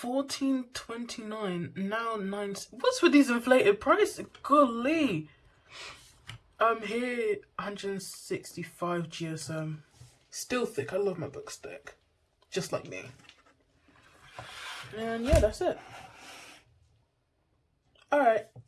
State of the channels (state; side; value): identical; both; correlation 1.00